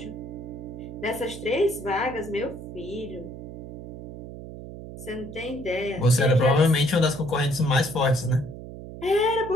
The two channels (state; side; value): noise; right; hum, 12 dB below the sound